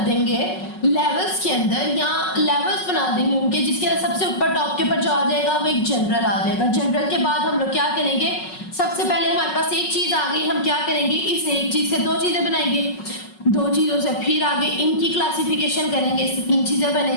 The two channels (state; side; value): late; right; 5.4 ms